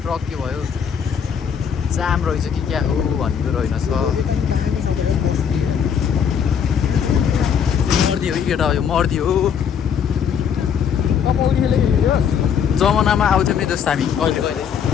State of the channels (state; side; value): quieter; right; 7.6 dB